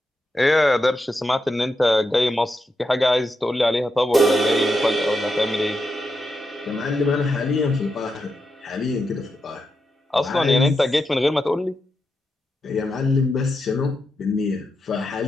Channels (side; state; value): both; normal; correlation 0.86